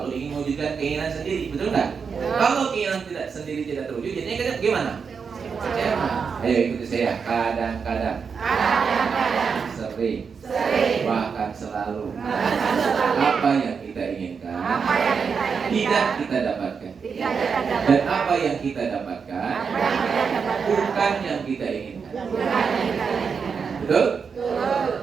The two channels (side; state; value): left; quieter; 5.9 dB